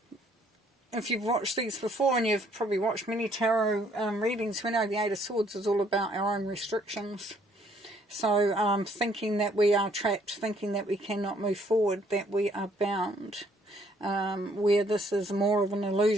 If you've watched these before, and you've probably watched many tarot readings, we know the Eight of Swords is all about our own restrictions. So, thinking that we are trapped, thinking that we cannot move forward, that we are bound, where this is more of an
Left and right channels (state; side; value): normal; both; correlation 0.65